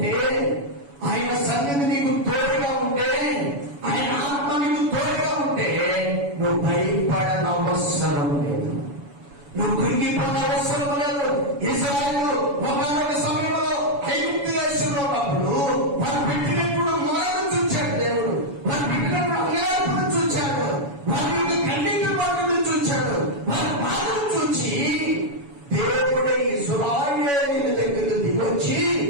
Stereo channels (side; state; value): left; late; 7.1 ms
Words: సన్నిధి నీకు తోడుగా ఉంటే, ఆయన ఆత్మ నీకు తోడుగా ఉంటే నువ్వు భయపడనవసరం లేదు, నువ్వు కృంగిపోయిన అవసరం లేదు. ఇశ్రాయేలు ఒకనొక సమయంలో ఐగుప్తు దేశంలో ఉన్నప్పుడు వారు పెట్టినప్పుడు మరణం చూచాడు దేవుడు, వారు పెట్టినప్పుడు అన్యాయపురం చూచాడు, వారి యొక్క కన్నీటి మాటలు చూచాడు, వారి బాధను చూచి దేవుడే ఇశ్రాయేలీయుల దగ్గరకు దిగొచ్చి